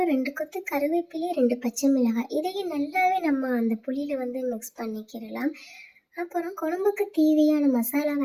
2 கொத்து கருவேப்பிலை, 2 பச்சை மிளகாய் இதையும் நல்லாவே நம்ம அந்த புளியில் மிக்ஸ் பண்ணிக்கிறலாம். அப்புறம் குழம்புக்கு தேவையான மசாலாவை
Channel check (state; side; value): identical; both; correlation 1.00